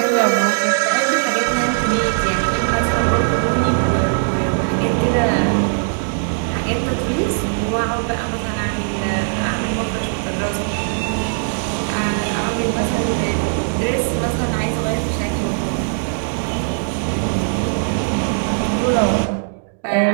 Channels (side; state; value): left; silent; digital silence